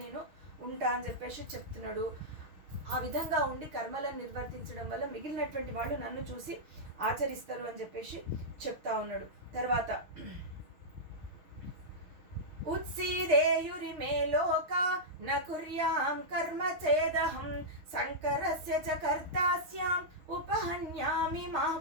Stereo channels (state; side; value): late; left; 6.3 ms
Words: నేను ఉంటా అని చెప్పేసి చెప్తున్నాడు. ఆ విధంగా ఉండి కర్మలను నిర్వర్తించడం వల్ల మిగిలినటువంటి వాళ్ళు నన్ను చూసి ఆచరిస్తారు అని చెప్పేసి చెప్తా ఉన్నాడు. తర్వాత ఉత్సీదేయురిమే లోక న కుర్యాం కర్మ చేదహం సంకరస్య చ కర్తాస్యాం ఉపహన్యామి మా